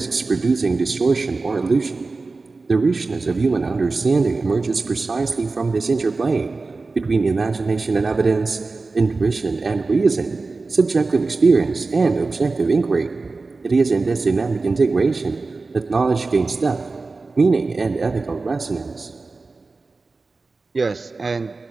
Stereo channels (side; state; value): left; quieter; 3.8 dB